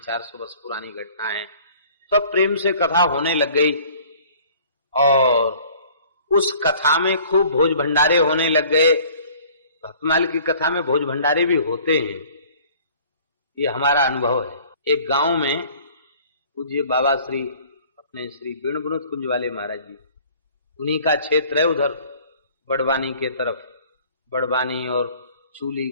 वर्ष पुरानी घटना है। सब प्रेम से कथा होने लग गई और उस कथा में खूब भोज भंडारे होने लग गए। भक्तमाल की कथा में भोज भंडारे भी होते हैं, ये हमारा अनुभव है। एक गांव में पूज्य बाबा श्री अपने श्री वेणु विनोद कुंज वाले महाराज जी, उन्हीं का क्षेत्र है उधर बड़वानी के तरफ। बड़वानी और चूली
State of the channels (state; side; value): inverted; both; correlation -0.52